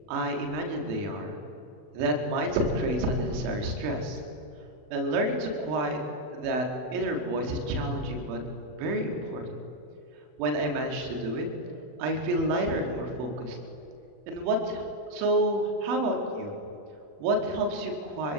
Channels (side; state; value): left; late; 40 ms